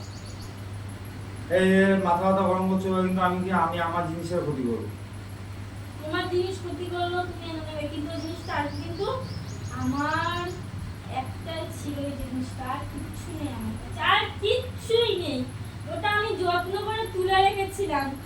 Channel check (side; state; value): both; identical; correlation 1.00